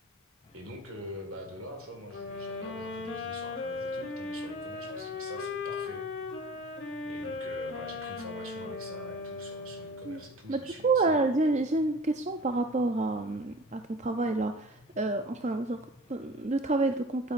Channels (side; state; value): both; normal; correlation 0.42